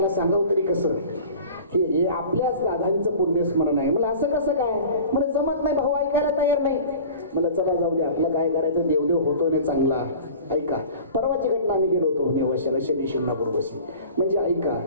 सांगावं तरी कसं? हे आपल्याच दादांचं पुण्यस्मरण आहे. मला असं कसं काय? मला जमत नाही, भाऊ ऐकायला तयार नाही. मला चला जाऊ दे, आपलं काय करायचं, देवदेव होतो ना चांगला. ऐका, परवाची घटना आम्ही गेलो होतो नेवाशाला शनी शिंगणापूर बशी. म्हणजे ऐका,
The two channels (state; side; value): inverted; both; correlation -0.41